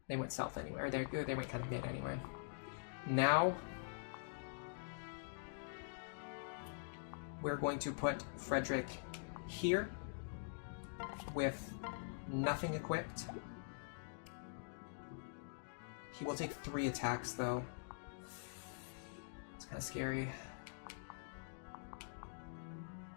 they went south anyway, or they went kind of mid anyway. Now we're going to put Frederick here with nothing equipped. He will take 3 attacks, though. It's kind of scary.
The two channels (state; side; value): silent; right; digital silence